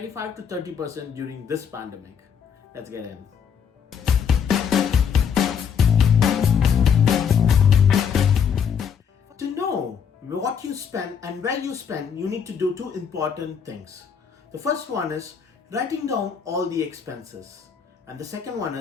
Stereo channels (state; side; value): quieter; right; 7.2 dB